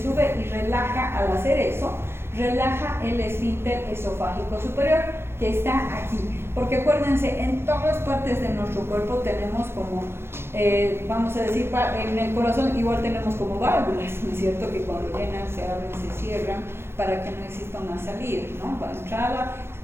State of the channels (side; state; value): left; late; 0.12 ms